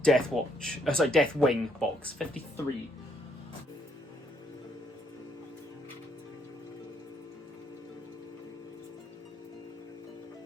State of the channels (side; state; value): both; normal; correlation 0.71